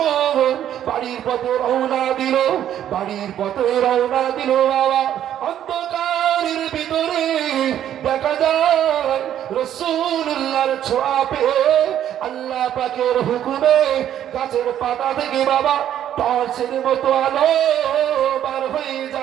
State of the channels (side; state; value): left; quieter; 10.8 dB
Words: বাড়ির পথে রওনা দিল, বাড়ির পথে রওনা দিল বাবা, অন্ধকারের ভিতরে দেখা যায় রাসূলুল্লাহর ছোঁয়া পেয়ে আল্লাহ পাকের হুকুমে গাছের পাতা থেকে বাবা টর্চের মতো আলো বার হয়ে